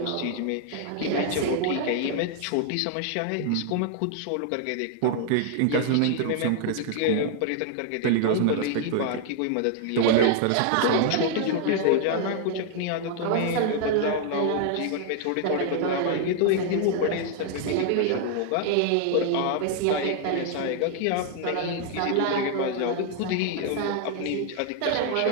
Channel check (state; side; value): different; both; correlation 0.00